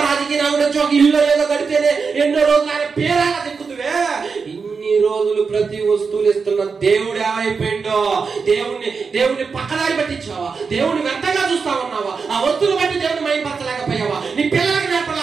రాజకీయ నాయకుడు వచ్చి ఒక ఇల్లు ఏదో కడితేనే ఎన్నో రోజులు ఆయన పేరాగా దిక్కుతువే. ఇన్ని రోజులు ప్రతి వస్తువులు ఇస్తున్న దేవుడు ఏమైపోయిందో? దేవుణ్ణి పక్కదారి పట్టించావా? దేవుణ్ణి వ్యర్థంగా చూస్తా ఉన్నావా? ఆ వస్తువులు బట్టి దేవుని మైపరచలేక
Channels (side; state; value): left; quieter; 5.2 dB